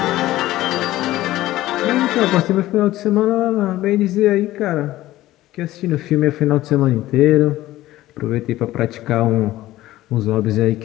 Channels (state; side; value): quieter; right; 15.8 dB